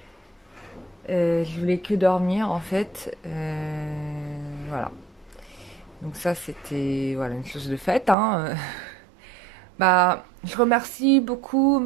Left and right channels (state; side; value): drops out; left; at 8.2 s